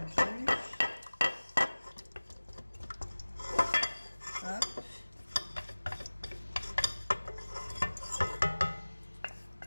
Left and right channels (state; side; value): inverted; both; correlation -1.00